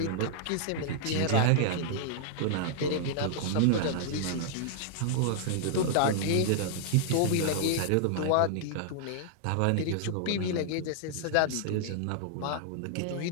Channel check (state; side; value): different; both; correlation -0.01